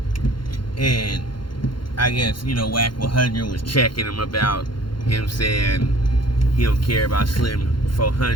and I guess, WACK100 was checking him about him saying he don't care about Slim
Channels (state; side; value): late; right; 0.72 ms